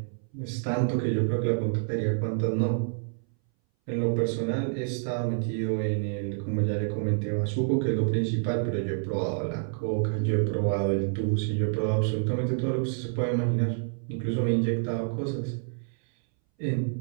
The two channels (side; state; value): left; silent; 59 dB below the other